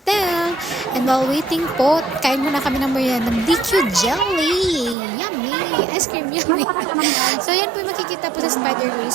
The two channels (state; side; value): drops out; left; at 5.0 s